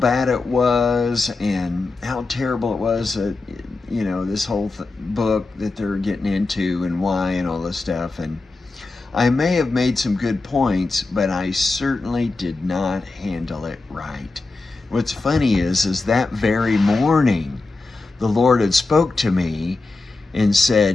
it was and how terrible it was that, this whole book that they're getting into and why and all this stuff. And I may have made some good points, but I certainly did not handle it right. What's funny is that very morning, the Lord had spoke to me and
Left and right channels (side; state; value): right; quieter; 3.5 dB